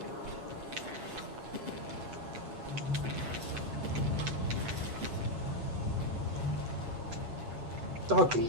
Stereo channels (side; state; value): left; late; 8.0 ms